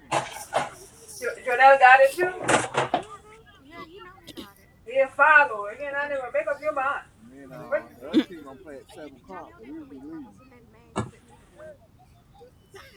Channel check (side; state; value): both; identical; correlation 1.00